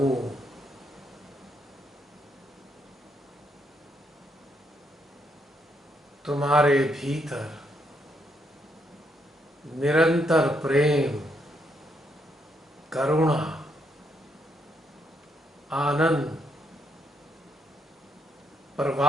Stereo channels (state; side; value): normal; both; correlation 0.76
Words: तुम्हारे भीतर निरंतर प्रेम, करुणा, आनंद